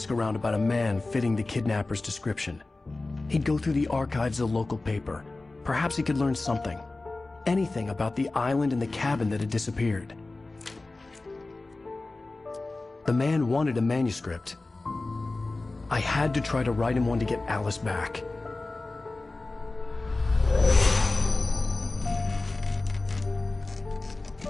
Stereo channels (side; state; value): right; quieter; 3.2 dB